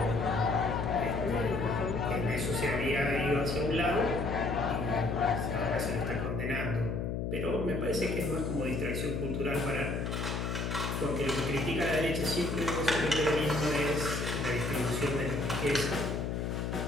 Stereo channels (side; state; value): left; noise; hum, 1 dB below the sound